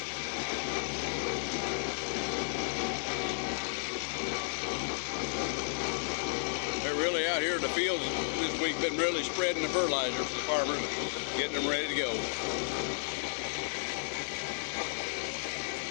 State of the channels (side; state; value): right; silent; digital silence